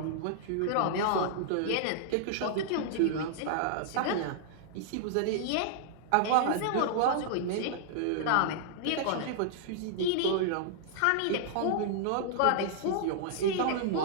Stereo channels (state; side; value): different; both; correlation -0.01